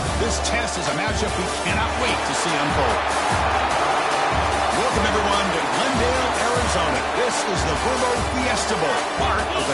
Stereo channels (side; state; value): both; identical; correlation 1.00